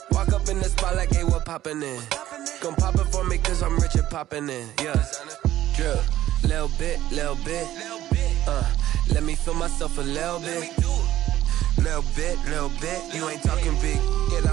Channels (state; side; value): quieter; left; 13.6 dB